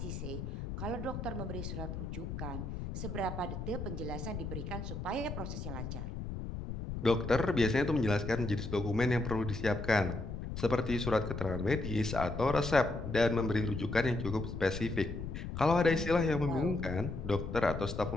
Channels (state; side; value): noise; left; rumble, 6 dB below the sound